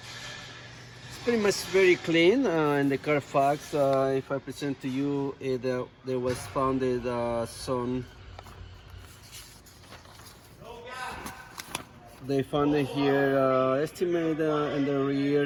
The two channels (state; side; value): identical; both; correlation 1.00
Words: It's pretty much very clean. In the Carfax, if I present to you, there was founded some. They found it here, estimated in the rear